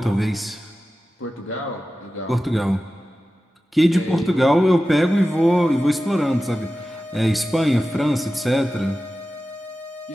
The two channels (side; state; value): both; normal; correlation 0.94